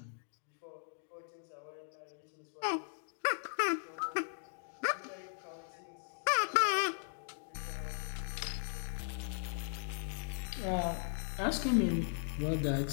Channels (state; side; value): silent; right; digital silence